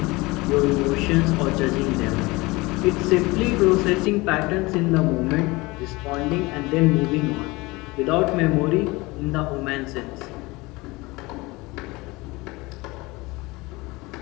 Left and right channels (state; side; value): quieter; right; 22.9 dB